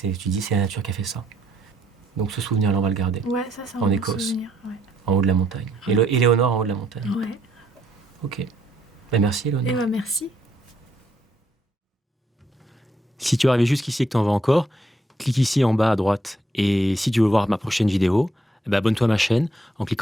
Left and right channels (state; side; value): normal; both; correlation 0.72